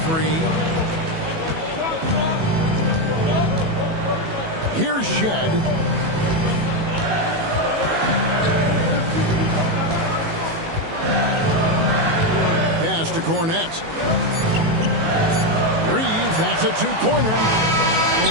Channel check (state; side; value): late; left; 18 ms